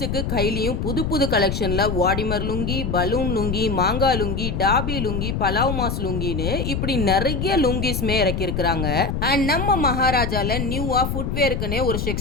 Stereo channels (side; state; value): left; noise; rumble, 2 dB below the sound